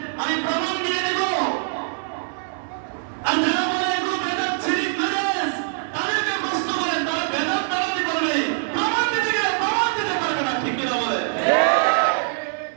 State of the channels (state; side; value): silent; left; digital silence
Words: আমি প্রমাণ দিয়ে দেব। আর যারা বলে এগুলো বেদাত শিরক নাজায়েজ, তাদেরকে প্রশ্ন করেন, তারা বেদাত নারাজি বলবে, প্রমাণ দিতে গেলে প্রমাণ দিতে পারবে না। ঠিক কিনা বলে?